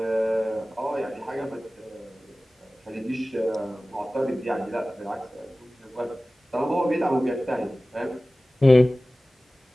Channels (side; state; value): both; normal; correlation 0.97